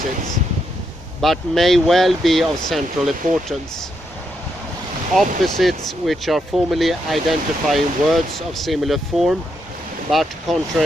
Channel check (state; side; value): normal; both; correlation 0.80